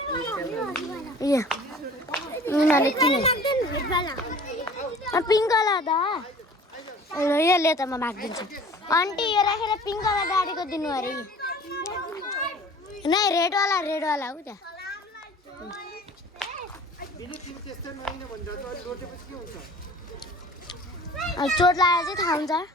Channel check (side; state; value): both; normal; correlation 0.46